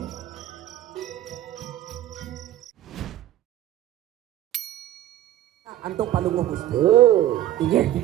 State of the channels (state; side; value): quieter; left; 12.9 dB